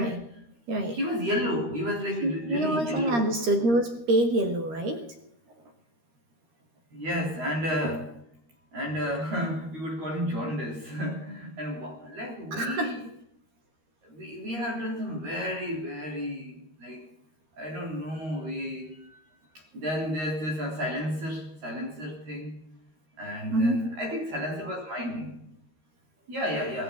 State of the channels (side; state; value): left; late; 13 ms